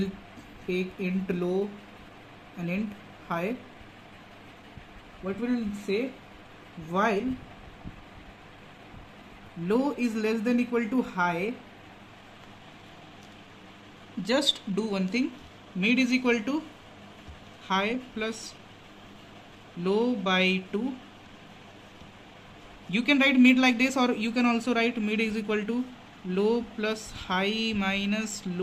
take int low and int high. What will say, while low is less than equal to high, just do one thing, mid is equal to high plus low by 2. You can write mid like this, or you can also write mid is equal to low plus high minus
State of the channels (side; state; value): both; identical; correlation 1.00